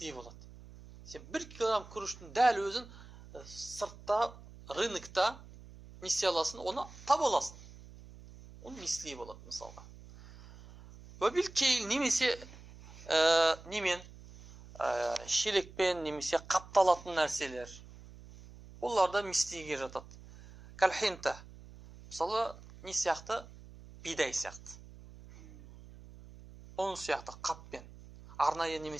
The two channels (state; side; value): noise; right; hum, 18 dB below the sound